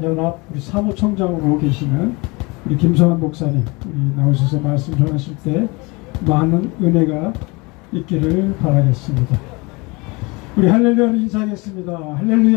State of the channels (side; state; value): right; quieter; 26.3 dB